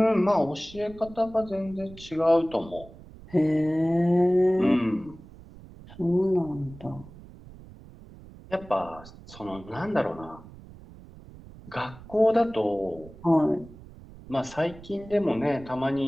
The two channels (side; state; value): right; noise; rumble, 19 dB below the sound